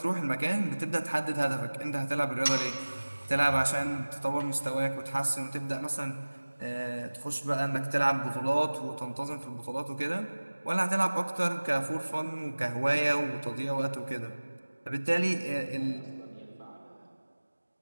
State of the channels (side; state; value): both; inverted; correlation -1.00